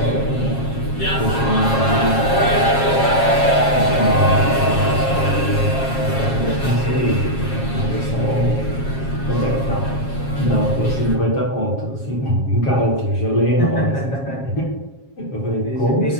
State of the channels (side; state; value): right; late; 7.4 ms